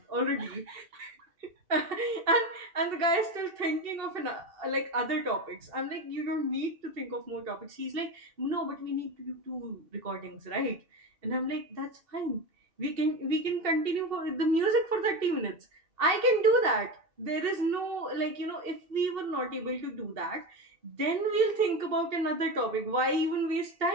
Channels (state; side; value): late; left; 2.7 ms